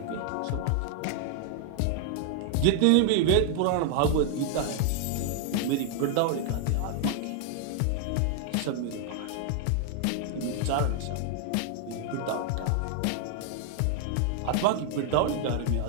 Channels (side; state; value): both; different; correlation 0.00